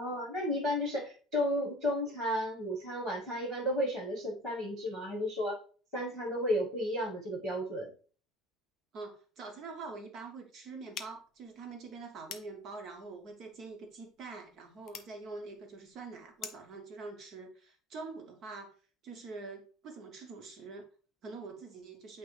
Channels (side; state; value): both; normal; correlation 0.43